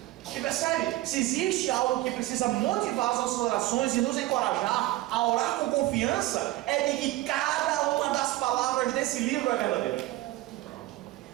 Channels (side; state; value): left; quieter; 17.2 dB